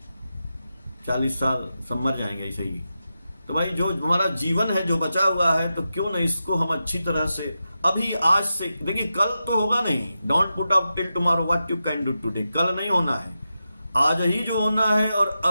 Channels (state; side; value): inverted; both; correlation -0.90